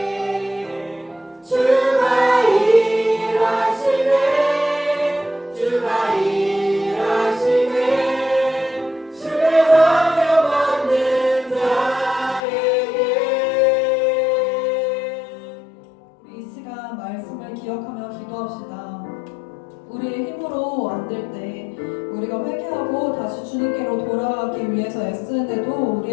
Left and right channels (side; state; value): right; drops out; at 12.4 s